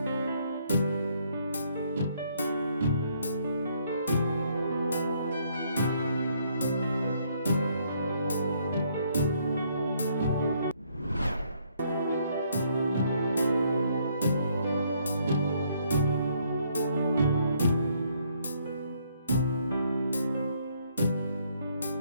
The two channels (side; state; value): both; inverted; correlation -0.69